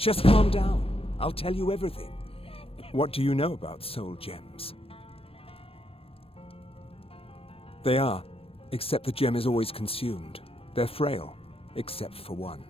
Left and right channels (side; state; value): right; late; 0.28 ms